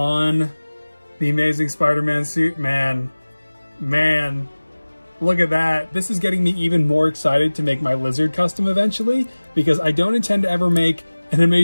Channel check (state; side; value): inverted; both; correlation -1.00